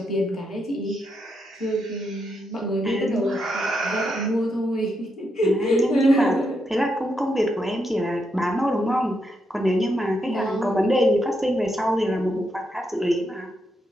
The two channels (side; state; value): both; normal; correlation 0.81